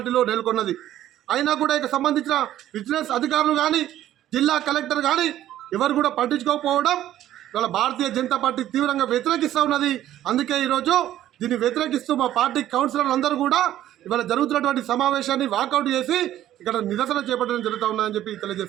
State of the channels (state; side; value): quieter; left; 12.7 dB